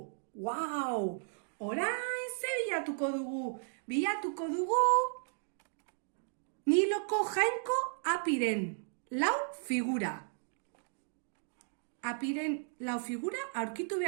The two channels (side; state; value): left; silent; digital silence